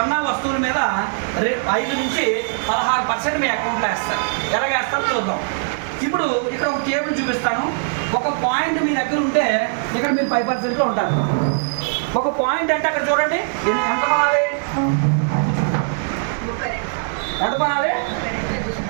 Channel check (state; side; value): silent; left; 59 dB below the other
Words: వస్తువుల మీద 5 నుంచి 16% మీ అకౌంట్లో వేస్తారు. ఎలాగ వేస్తారో చూద్దాం. ఇప్పుడు ఇక్కడ ఒక టేబుల్ చూపిస్తాను. ఒక పాయింట్ మీ దగ్గర ఉంటే ఇక్కడ మీరు 5%లో ఉంటారు. ఒక పాయింట్ అంటే అక్కడ చూడండి ఎంత కొనాలి, ఎంత కొనాలి,